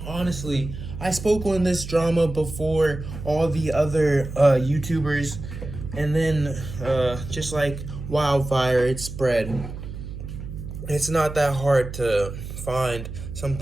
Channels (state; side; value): noise; right; hum, 9 dB below the sound